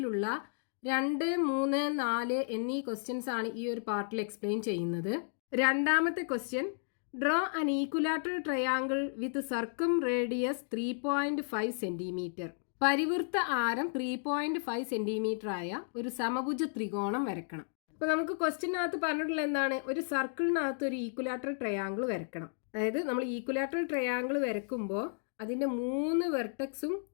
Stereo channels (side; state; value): right; silent; digital silence